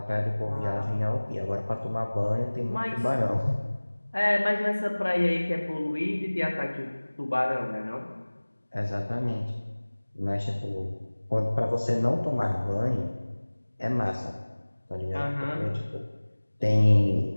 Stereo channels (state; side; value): inverted; both; correlation -1.00